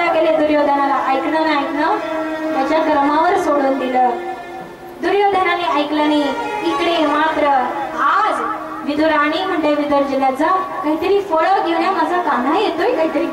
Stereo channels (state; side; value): identical; both; correlation 1.00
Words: गेले दुर्योधनाला. ऐकणं त्याच्या क्रमावर सोडून दिलं. दुर्योधनाने ऐकलं नाही. इकडे मात्र आज विदुराणी म्हणते विदुर जिल्ह्याचा काहीतरी फळं घेऊन या, माझा कान्हा येतोय, काहीतरी